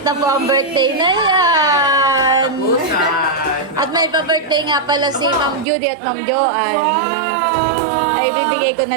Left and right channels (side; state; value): left; drops out; at 5.7 s